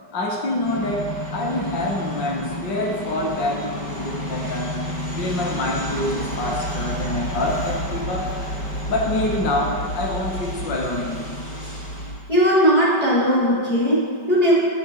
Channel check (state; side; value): late; right; 5.2 ms